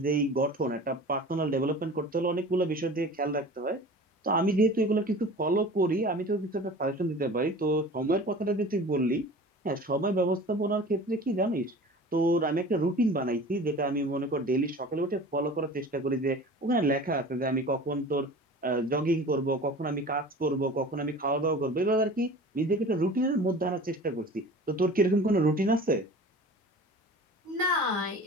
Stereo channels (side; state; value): both; normal; correlation 0.40